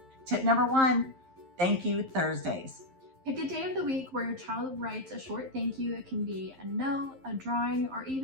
Tip number 1, Thank You Thursdays. Pick a day of the week where your child writes a short thank you. It can be a note, a drawing, or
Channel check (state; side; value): late; left; 11 ms